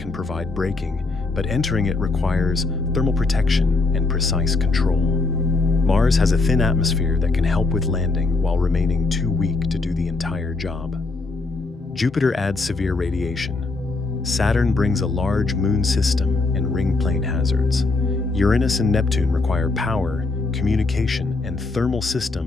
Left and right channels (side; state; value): right; quieter; 3.5 dB